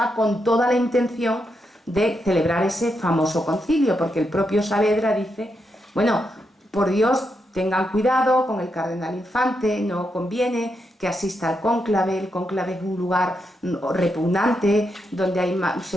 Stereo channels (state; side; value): normal; both; correlation 0.83